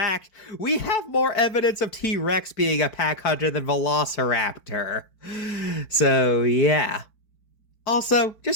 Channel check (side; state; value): right; late; 4.5 ms